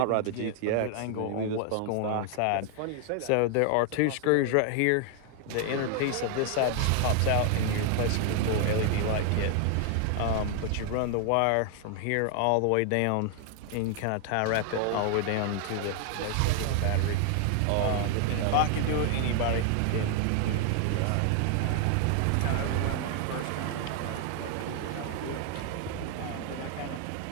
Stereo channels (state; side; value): different; both; correlation 0.00